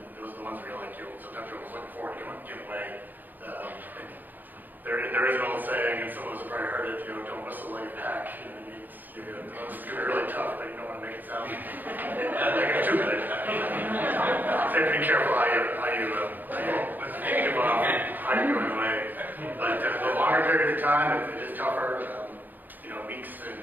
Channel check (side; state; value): left; late; 0.086 ms